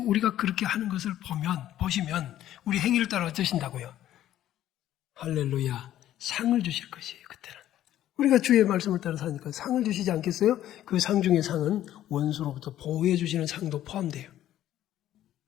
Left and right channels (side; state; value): right; quieter; 12.6 dB